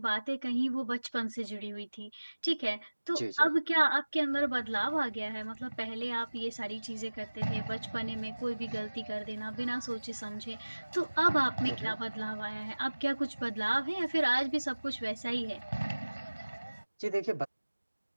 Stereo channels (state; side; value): inverted; both; correlation -1.00